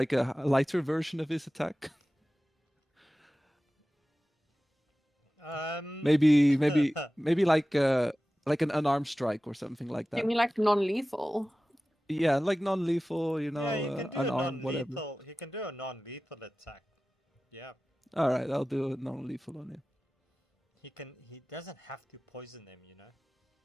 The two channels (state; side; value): normal; both; correlation 0.96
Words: a lighter version of his attack? Maybe like an unarmed strike or something like You that. mean like non-lethal? Yeah, like non-lethal, you know, Yeah, he can do a unarmed, whatever. non-lethal. He can do a non-lethal attack. Yeah. All right, I'll do a non-lethal on him. He can. He doesn't have to poison them, you know.